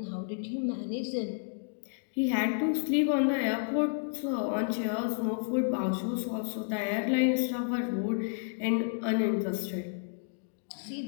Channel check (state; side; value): silent; right; digital silence